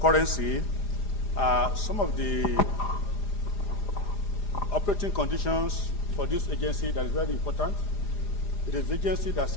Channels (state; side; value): late; right; 4.9 ms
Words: currency some of the operating conditions for this agency that is very important. It is the agency that